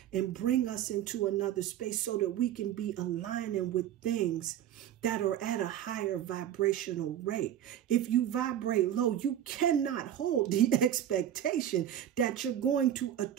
and bring us into another space so that we can be aligning with things that are at a higher vibrational rate. If you vibrate low, you cannot hold the expectation that you're going to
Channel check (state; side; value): quieter; left; 10.8 dB